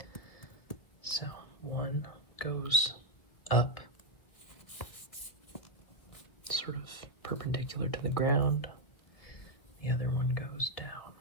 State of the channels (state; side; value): late; right; 2.1 ms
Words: So one goes up, sort of perpendicular to the ground. The other one goes down.